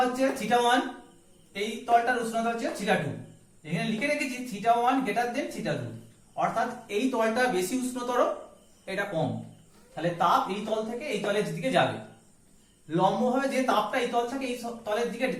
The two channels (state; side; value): identical; both; correlation 1.00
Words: হচ্ছে θ1, এই তলটার উষ্ণতা হচ্ছে θ2। এখানে লিখে রেখেছি θ1 > θ2, অর্থাৎ এই তলটা বেশি উষ্ণতর, এটা কম। তাহলে তাপ এই তল থেকে এই তলের দিকে যাবে। লম্বভাবে যে তাপটা এই তল থেকে এই তলের দিকে